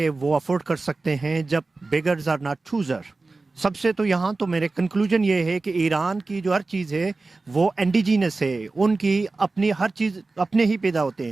وہ افورڈ کر سکتے ہیں جب بیگرز آر ناٹ چوزر. سب سے تو یہاں تو میرے کنکلوژن یہ ہے کہ ایران کی جو ہر چیز ہے وہ انڈیجینس ہے، ان کی اپنی ہر چیز اپنے ہی پیدا ہوتے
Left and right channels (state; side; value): quieter; left; 3.6 dB